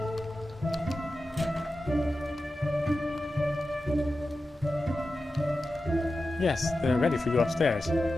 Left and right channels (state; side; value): normal; both; correlation 0.93